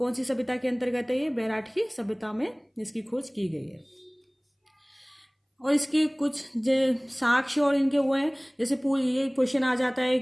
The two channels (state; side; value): identical; both; correlation 1.00